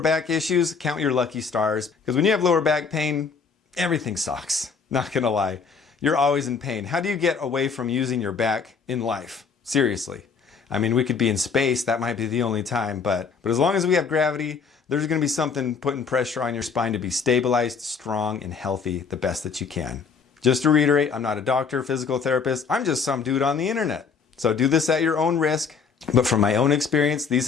issues, count your lucky stars. Because when you have lower back pain, everything sucks. Not gonna lie. You're always in pain. How do you get away from using your back in life? Seriously. I mean, we could be in space. That might be the only time. But as long as we have gravity, there's gonna be something putting pressure on your spine to be stabilized, strong, and healthy the best that you can. Just to reiterate, I'm not a doctor, physical therapist. I'm just some dude on the internet. So do this at your own risk. But from my own experience, these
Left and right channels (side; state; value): right; quieter; 5.6 dB